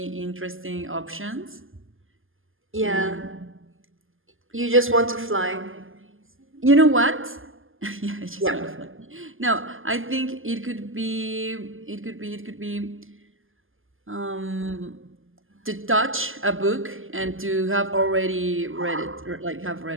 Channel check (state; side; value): late; left; 0.59 ms